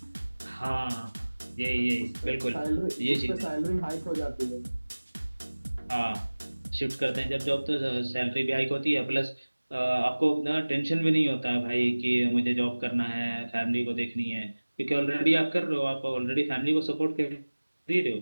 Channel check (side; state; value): both; inverted; correlation -1.00